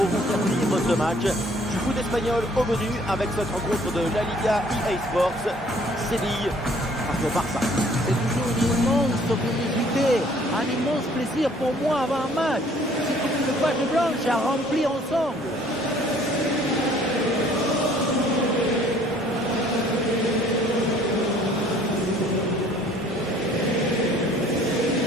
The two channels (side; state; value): both; normal; correlation 0.57